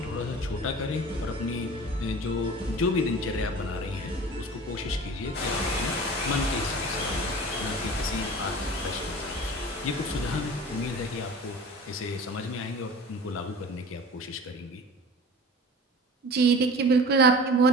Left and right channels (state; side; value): normal; both; correlation 0.39